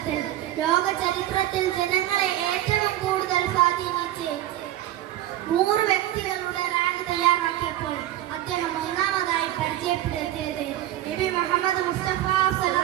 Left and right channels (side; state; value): left; quieter; 13.7 dB